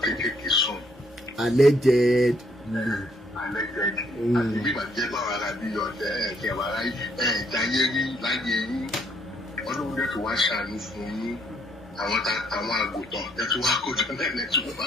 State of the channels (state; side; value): normal; both; correlation 0.68